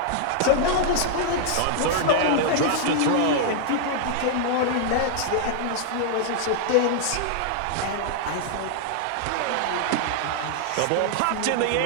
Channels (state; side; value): different; both; correlation -0.01